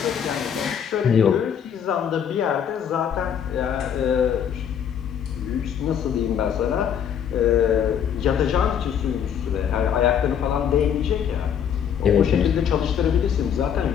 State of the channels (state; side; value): quieter; right; 8.4 dB